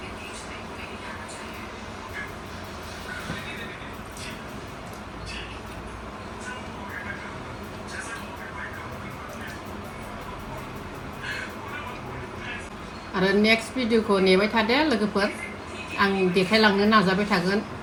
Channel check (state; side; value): identical; both; correlation 1.00